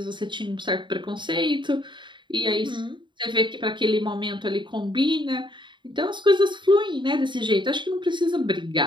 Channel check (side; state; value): left; late; 0.23 ms